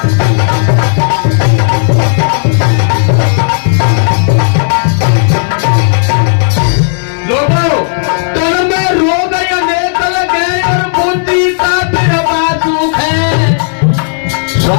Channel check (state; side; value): silent; right; digital silence